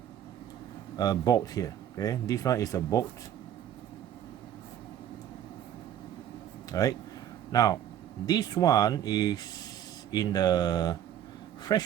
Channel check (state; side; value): quieter; left; 10.6 dB